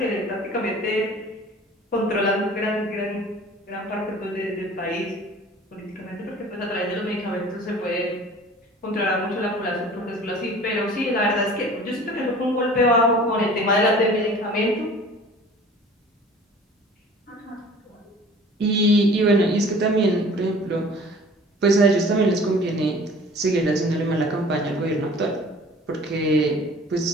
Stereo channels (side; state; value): both; normal; correlation 0.46